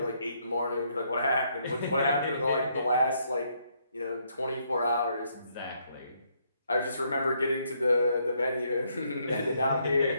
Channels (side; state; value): both; inverted; correlation -0.73